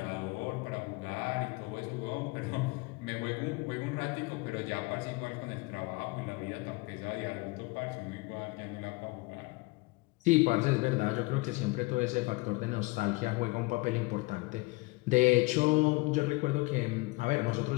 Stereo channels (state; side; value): quieter; right; 23.9 dB